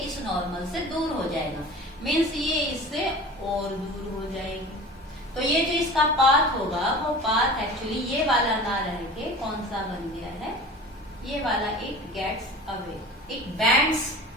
इस नॉर्मल से दूर हो जाएगा, मीन्स ये इससे और दूर हो जाएगी। तो ये जो इसका पाथ होगा वो पाथ एक्चुअली ये वाला ना रह के कौन सा बन गया है, ये वाला, it gets away, it bends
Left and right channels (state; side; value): normal; both; correlation 0.38